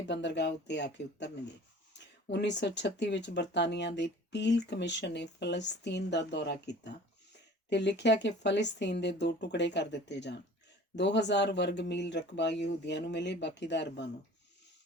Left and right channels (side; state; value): both; normal; correlation 0.45